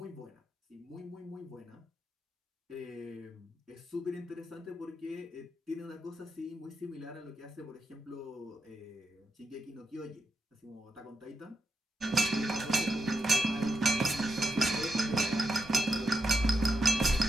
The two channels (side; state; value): both; normal; correlation 0.83